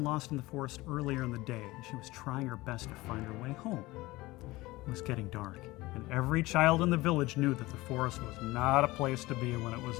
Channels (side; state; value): right; quieter; 19.9 dB